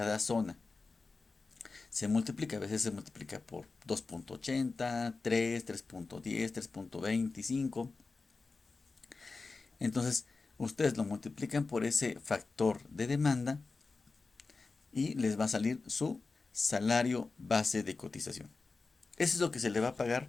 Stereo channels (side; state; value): right; quieter; 4.0 dB